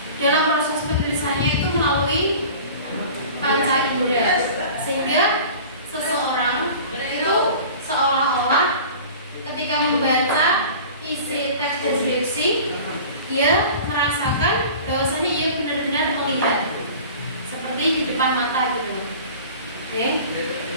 dalam proses penulisannya itu melalui panca indera, sehingga seseorang itu seolah-olah ketika membaca isi teks deskripsi dia merasakan bahwasanya ia benar-benar melihat seperti di depan mata gitu. Oke.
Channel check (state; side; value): inverted; both; correlation -0.41